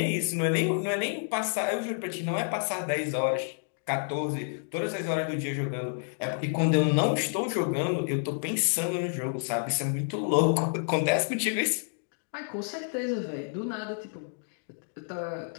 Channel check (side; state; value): right; silent; digital silence